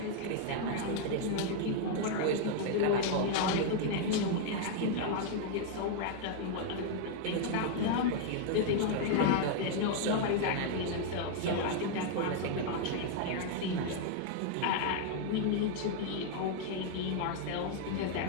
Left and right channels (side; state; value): both; different; correlation 0.00